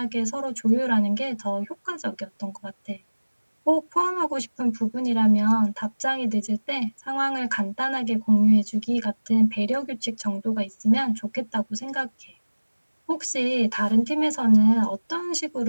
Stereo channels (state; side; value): inverted; both; correlation -1.00